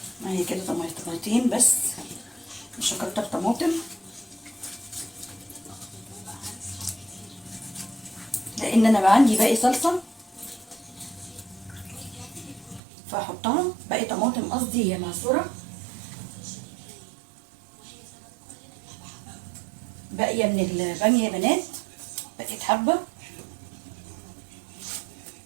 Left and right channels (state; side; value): drops out; left; at 12.8 s